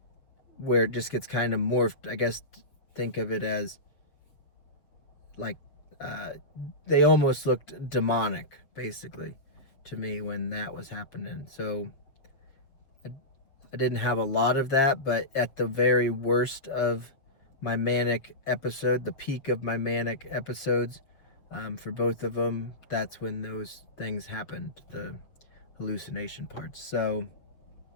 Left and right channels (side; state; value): right; late; 7.1 ms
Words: where it just gets kind of morphed. I guess think of it as like they almost looked demonic, basically, to me when that was happening. So I didn't have a lot of that, but at the very worst of my manic episode, the peak of my manic episodes, for both of them, that's when those things happened, the hallucination parts. So